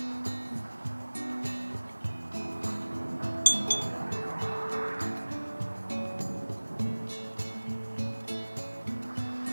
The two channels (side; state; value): both; inverted; correlation -1.00